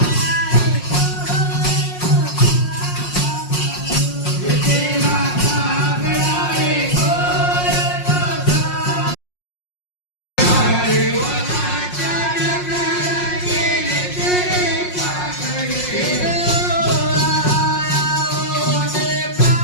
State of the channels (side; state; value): right; late; 5.5 ms